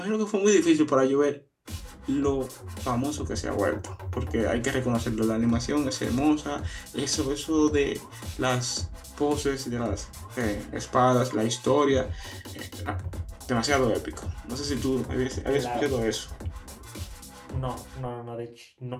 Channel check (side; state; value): both; identical; correlation 1.00